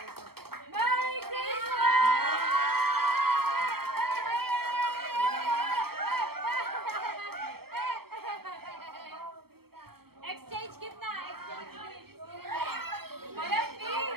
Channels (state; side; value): late; left; 0.95 ms